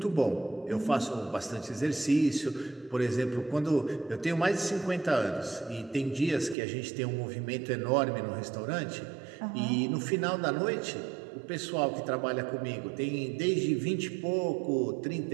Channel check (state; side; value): drops out; left; at 6.6 s